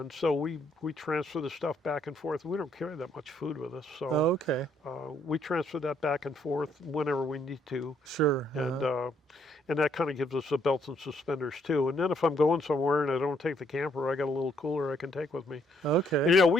so we transfer the stuff back and forth. We don't carry that much food with us, so Oh, okay. we transfer that back and forth whenever we need to, Sure. and Uh-huh. that kind of gives us the belts and suspenders too. And then if I'm going somewhere and I don't take the camper, I got a little cooler I can take with me. Okay. And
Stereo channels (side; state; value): both; normal; correlation 0.69